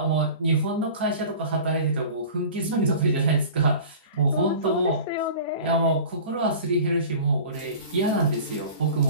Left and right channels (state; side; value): inverted; both; correlation -0.40